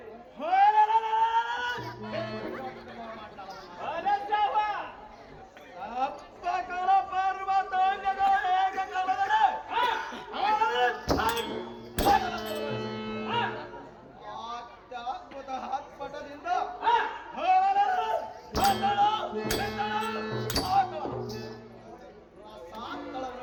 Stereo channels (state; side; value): identical; both; correlation 1.00